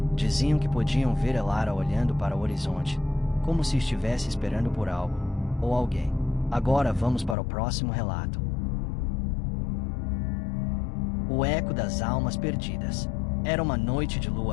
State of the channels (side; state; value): right; drops out; at 7.4 s